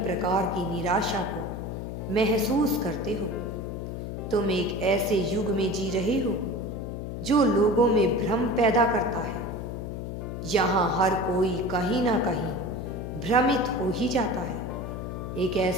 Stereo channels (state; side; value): noise; left; hum, 6 dB below the sound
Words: की निराशा को महसूस करते हो। तुम एक ऐसे युग में जी रहे हो जो लोगों में भ्रम पैदा करता है। यहाँ हर कोई कहीं ना कहीं भ्रमित हो ही जाता है। एक